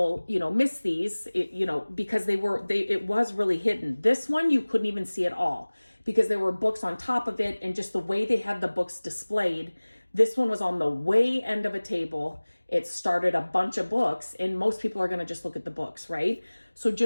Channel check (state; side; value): inverted; both; correlation -1.00